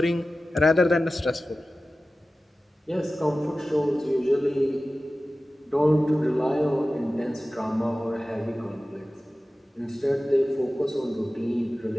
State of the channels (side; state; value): both; normal; correlation 0.95